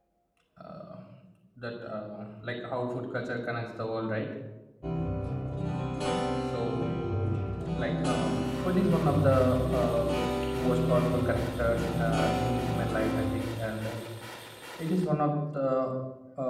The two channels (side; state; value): both; identical; correlation 1.00